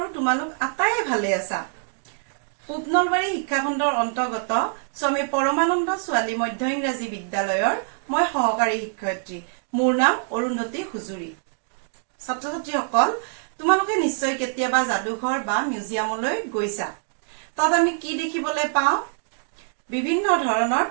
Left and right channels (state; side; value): silent; left; digital silence